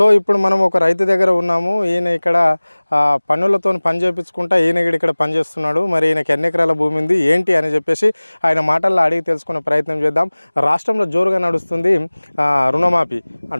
ఇప్పుడు మనం ఒక రైతు దగ్గర ఉన్నాము. ఈయన ఇక్కడ పన్నులతో పని చేయించుకుంటా ఈయన ఇక్కడ పని చేస్తున్నాడు. మరి ఈయనకి ఎన్ని ఎకరాల భూమి ఉంది ఏంటి అని చెప్పేసి ఆయన మాటల్లో అడిగి తెలుసుకునే ప్రయత్నం చేద్దాం. రాష్ట్రంలో జోరుగా నడుస్తుంది రుణమాఫీ.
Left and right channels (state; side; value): inverted; both; correlation -1.00